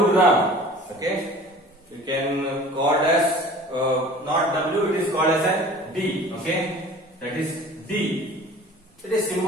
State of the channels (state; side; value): normal; both; correlation 0.44